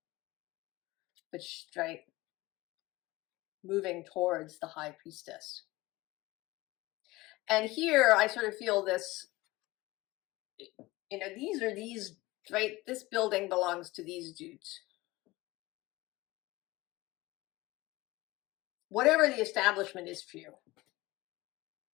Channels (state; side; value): quieter; right; 20.2 dB